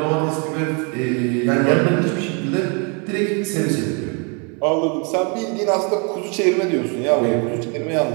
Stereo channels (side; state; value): left; quieter; 35.1 dB